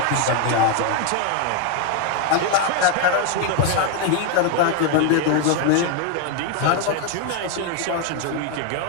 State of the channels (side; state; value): both; different; correlation 0.01